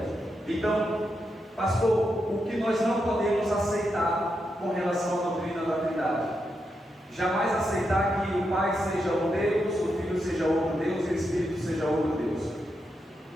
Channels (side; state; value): both; normal; correlation 0.84